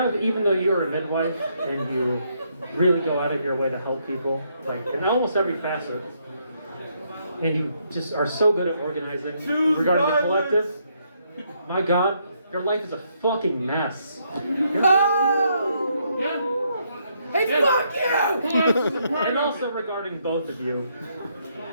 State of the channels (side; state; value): both; inverted; correlation -0.74